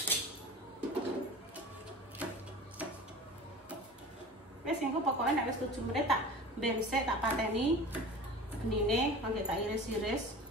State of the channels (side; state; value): both; normal; correlation 0.37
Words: Wes engko pokoke nek wis 7 menit tak bensek tak pateni benine kangge tak iris-iris.